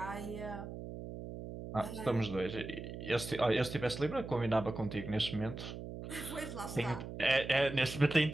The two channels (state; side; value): noise; right; hum, 9 dB below the sound